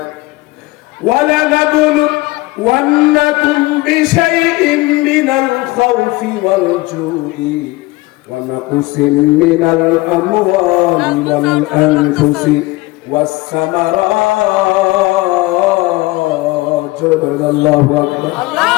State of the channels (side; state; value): right; quieter; 21.0 dB